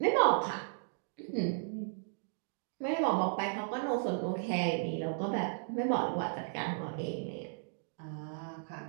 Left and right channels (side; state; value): left; silent; digital silence